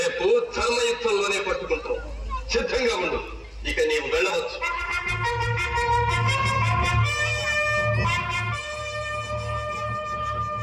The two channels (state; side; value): identical; both; correlation 1.00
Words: ధర్మయుద్ధంలోనే పట్టుకుంటాం. సిద్ధంగా ఉండు. ఇక నీవు వెళ్ళవచ్చు.